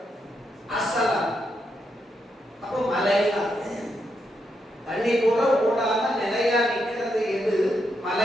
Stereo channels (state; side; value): normal; both; correlation 0.81